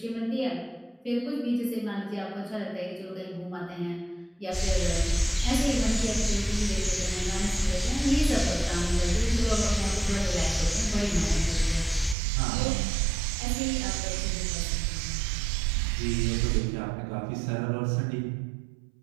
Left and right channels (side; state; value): left; drops out; at 12.2 s